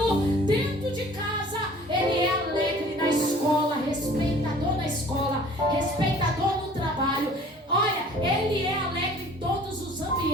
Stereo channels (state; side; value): normal; both; correlation 0.50